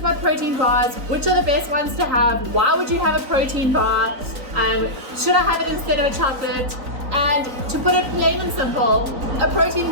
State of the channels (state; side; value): late; left; 3.9 ms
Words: protein bars. Which are the best ones to have? Why would you have a protein bar? Should I have it instead of a chocolate? And to put it plain and simple, a protein